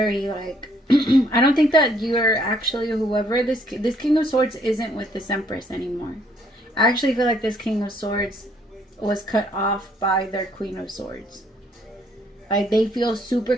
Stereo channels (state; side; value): normal; both; correlation 0.66